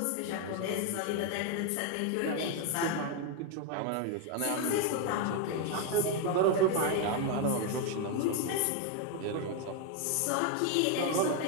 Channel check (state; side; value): different; both; correlation 0.01